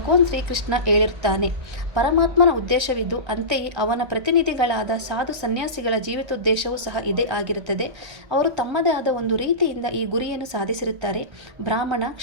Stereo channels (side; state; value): left; late; 1.3 ms